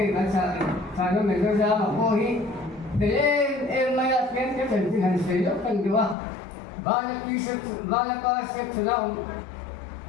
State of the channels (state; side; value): drops out; right; at 6.2 s